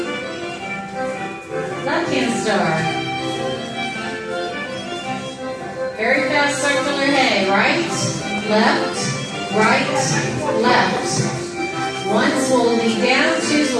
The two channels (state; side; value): identical; both; correlation 1.00